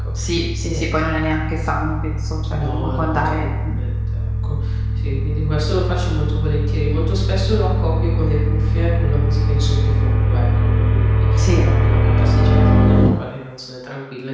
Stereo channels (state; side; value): identical; both; correlation 1.00